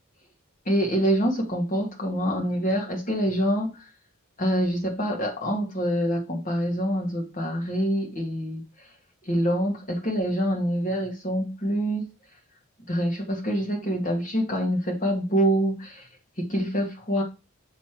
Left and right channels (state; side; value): normal; both; correlation 0.63